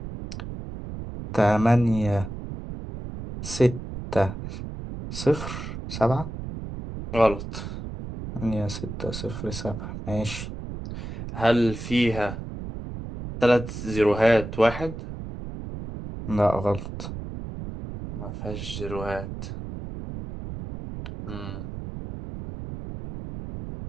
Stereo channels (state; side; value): noise; right; rumble, 8 dB below the sound